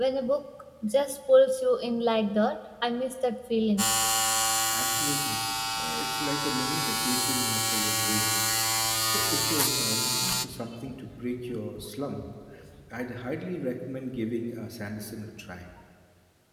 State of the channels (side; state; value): both; identical; correlation 1.00